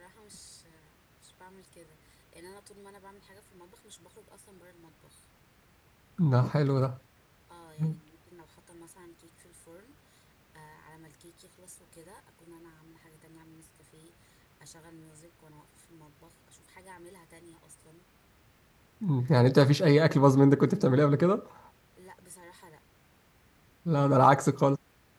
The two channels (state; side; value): identical; both; correlation 1.00